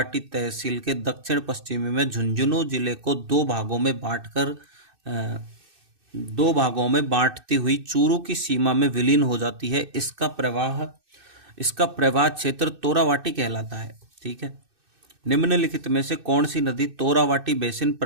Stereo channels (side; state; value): left; late; 2.6 ms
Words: तहसील के दक्षिण पश्चिमी में झुंझुनू जिले को दो भागों में बांटती हुई चूरू की सीमा में विलीन हो जाती है। इसका प्रवाह क्षेत्र तोरावाटी कहलाता है। ठीक है। निम्नलिखित में से कौन सी नदी तोरावाटी बेसिन